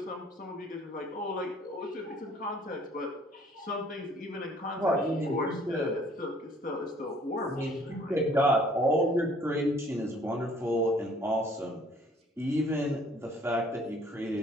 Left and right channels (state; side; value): normal; both; correlation 0.58